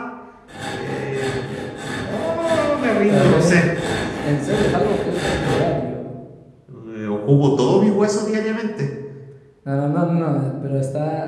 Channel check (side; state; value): both; identical; correlation 1.00